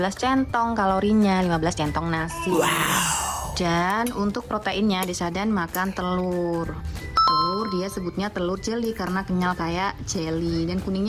centong kalorinya, 15 centong nasi. Dan untuk proteinnya adik Syahdan makan telur. Telur dia sebutnya telur jelly karena kenyal kayak jelly, dan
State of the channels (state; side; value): identical; both; correlation 1.00